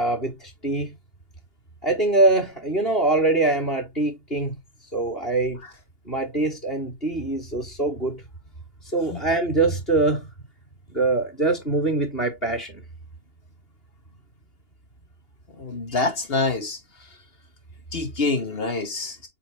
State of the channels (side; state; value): right; late; 2.8 ms